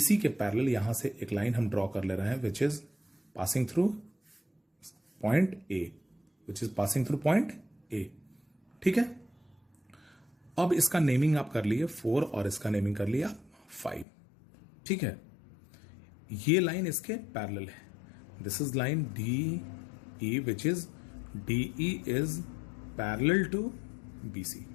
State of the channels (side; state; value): right; drops out; at 14.1 s